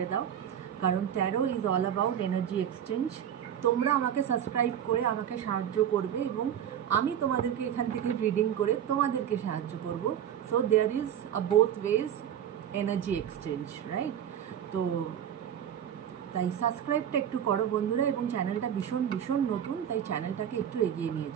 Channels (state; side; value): quieter; left; 9.6 dB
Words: দাও, কারণ taro is all about energy exchange. তোমরা আমাকে সাবস্ক্রাইব করে আমাকে সাহায্য করবে এবং আমি তোমাদেরকে এখান থেকে রিডিং করে তোমাদেরকে সাহায্য করব। So there is a both ways energy exchange, right? তো তাই সাবস্ক্রাইবটা একটু করো বন্ধুরা, এবং চ্যানেলটা ভীষণ ভীষণ নতুন, তাই চ্যানেলটাকে একটু এগিয়ে নিয়ে